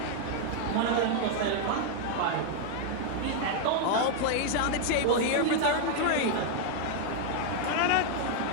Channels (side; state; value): both; different; correlation 0.00